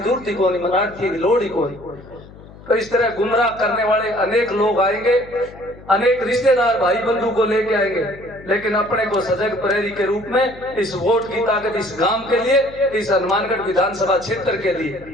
ही कोनी, मन आड़ती की लोड़ ही कोनी। तो इस तरह गुमराह करने वाले अनेक लोग आएंगे, अनेक रिश्तेदार भाई बंधु को लेके आएंगे, लेकिन अपने को सजग प्रहरी के रूप में इस वोट की ताकत इस गांव के लिए, इस हनुमानगढ़ विधानसभा क्षेत्र के लिए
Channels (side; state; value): left; noise; hum, 20 dB below the sound